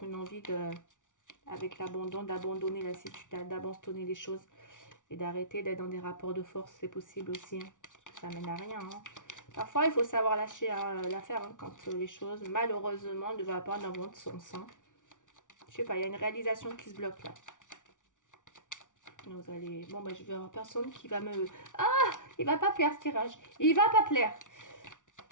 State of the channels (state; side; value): late; right; 0.87 ms